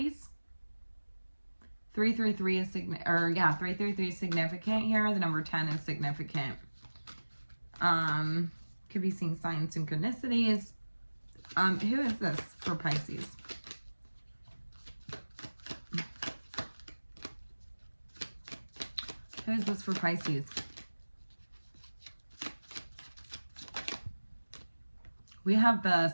333 is 333 is significant here. The number 10 is significant. Could be seeing signs synchronicities. Who is this for Pisces? Who is this for Pisces? We have the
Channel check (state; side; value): inverted; both; correlation -1.00